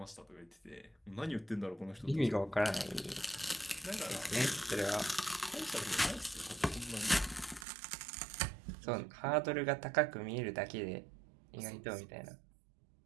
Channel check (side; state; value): left; drops out; at 7.7 s